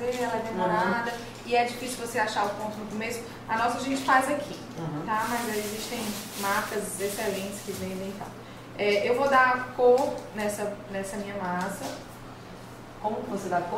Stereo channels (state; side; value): identical; both; correlation 1.00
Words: ela é demorada e é difícil você achar o ponto no começo. A nossa a gente faz aqui, tá? Mas existem marcas excelentes que vendem e tal. Eu vou dar cor nessa minha massa. Como que você dá